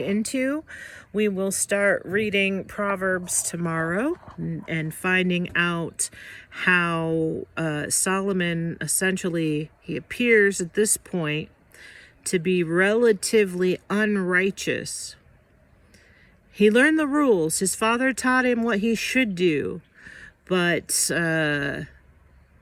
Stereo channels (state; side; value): identical; both; correlation 1.00